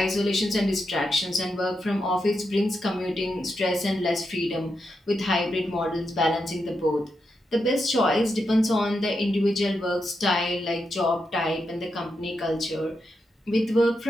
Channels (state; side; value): normal; both; correlation 0.85